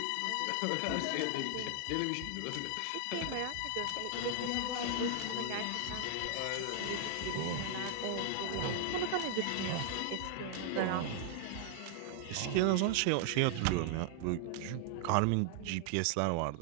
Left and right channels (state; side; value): different; both; correlation 0.00